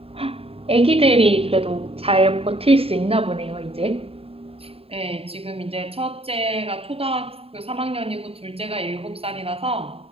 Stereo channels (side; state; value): left; late; 0.28 ms